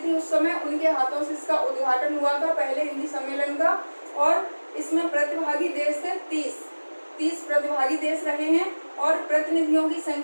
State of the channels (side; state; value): both; inverted; correlation -1.00